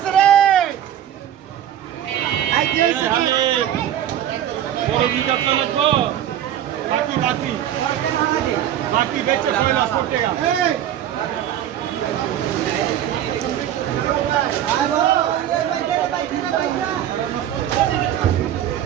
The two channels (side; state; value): left; quieter; 11.0 dB